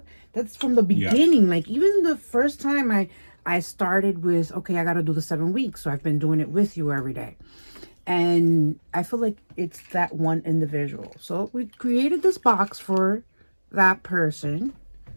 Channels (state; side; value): inverted; both; correlation -1.00